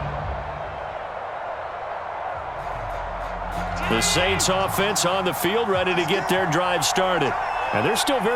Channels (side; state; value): both; identical; correlation 1.00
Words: The Saints offense on the field, ready to get their drive started. And they're still